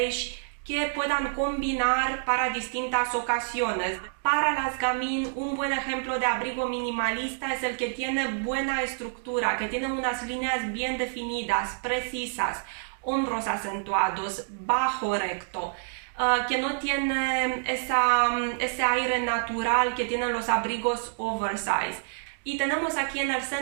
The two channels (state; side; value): silent; left; digital silence